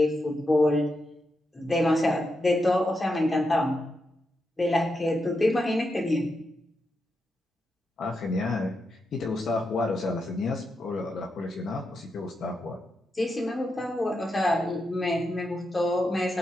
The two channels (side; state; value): both; normal; correlation 0.86